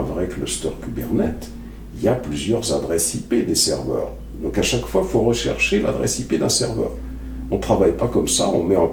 vrai cluster Kubernetes, il y a plusieurs adresses IP des serveurs. Donc à chaque fois, il faut rechercher l'adresse IP d'un serveur. On ne travaille pas comme ça, on met en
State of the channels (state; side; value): identical; both; correlation 1.00